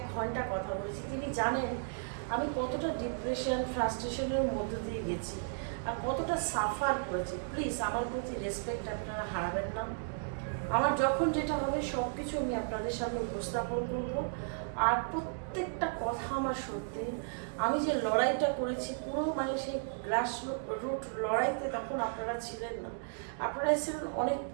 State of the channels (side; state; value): left; silent; digital silence